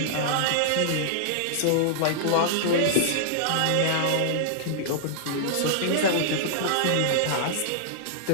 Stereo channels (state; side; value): different; both; correlation -0.01